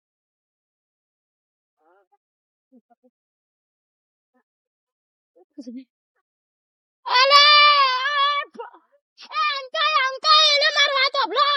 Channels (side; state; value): both; identical; correlation 1.00